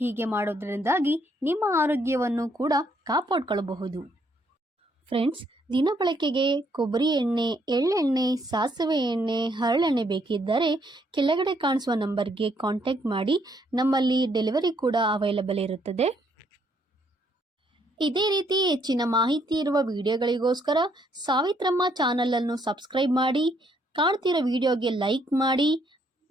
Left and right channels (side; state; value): both; normal; correlation 0.70